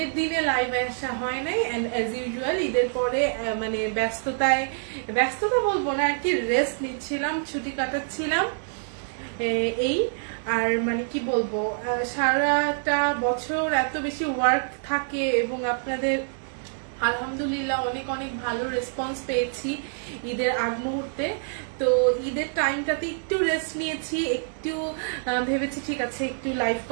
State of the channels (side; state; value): left; silent; digital silence